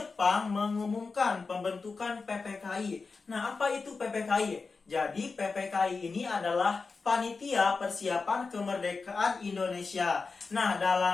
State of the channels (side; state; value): right; quieter; 4.4 dB